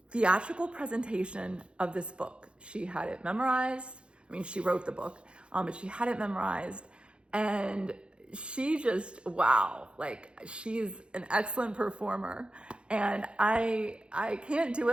theatrical presentation of this book. She had it memorized. I mean, she wrote the book, but she had it memorized. And she just, wow, like she's an excellent performer, and I can't do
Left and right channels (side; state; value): left; late; 0.056 ms